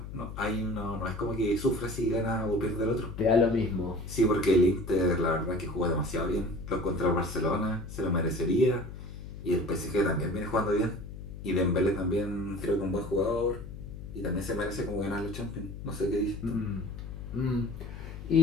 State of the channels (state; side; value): noise; left; hum, 10 dB below the sound